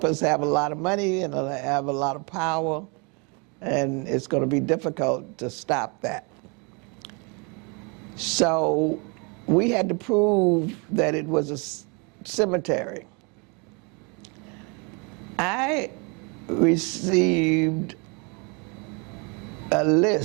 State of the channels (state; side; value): quieter; left; 32.1 dB